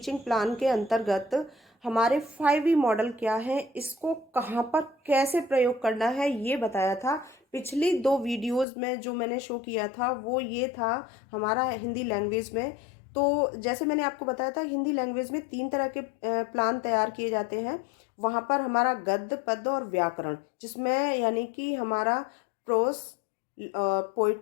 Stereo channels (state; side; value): drops out; right; at 8.7 s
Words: प्लान के अंतर्गत हमारे 5E मॉडल क्या है, इसको कहाँ पर कैसे प्रयोग करना है, ये बताया था। पिछली 2 वीडियोस में जो मैंने शो किया था वो ये था हमारा हिंदी लैंग्वेज में। तो जैसे मैंने आपको बताया था, हिंदी लैंग्वेज में 3 तरह के प्लान तैयार किए जाते हैं। वहाँ पर हमारा गद्य, पद्य और व्याकरण, जिसमें यानी कि हमारा प्रोस,